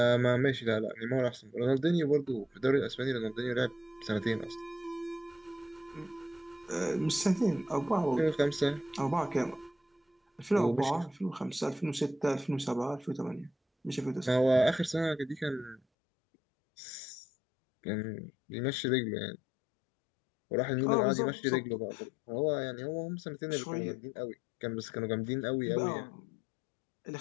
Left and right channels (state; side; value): drops out; right; at 15.8 s